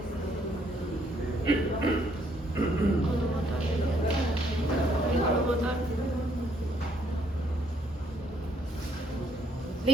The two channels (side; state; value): both; normal; correlation 0.69